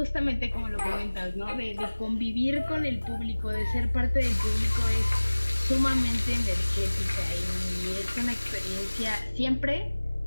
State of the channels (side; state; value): both; inverted; correlation -1.00